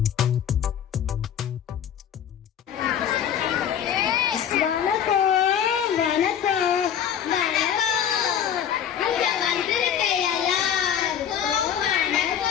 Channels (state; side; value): quieter; right; 9.1 dB